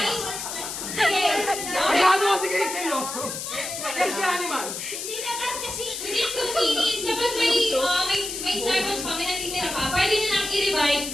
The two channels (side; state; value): left; noise; hiss, 6 dB below the sound